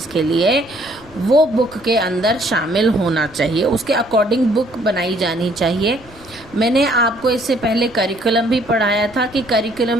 के लिए, वो बुक के अंदर शामिल होना चाहिए, उसके अकॉर्डिंग बुक बनाई जानी चाहिए। मैंने आपको इससे पहले करिकुलम भी पढ़ाया था कि करिकुलम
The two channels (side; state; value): right; noise; rumble, 24 dB below the sound